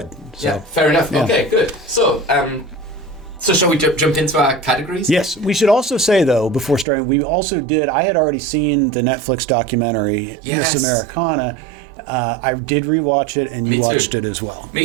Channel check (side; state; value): left; drops out; at 6.9 s